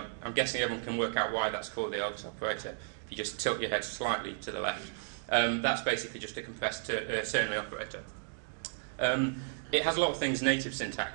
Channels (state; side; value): silent; left; digital silence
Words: guessing everyone can work out why that's called the Elvis operator. If you just tilt your head slightly to the left. That's basically just a compressed ternary operator. It has a lot of things native